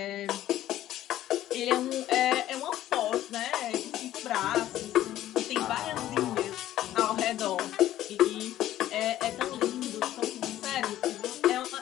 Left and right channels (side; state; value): right; quieter; 13.3 dB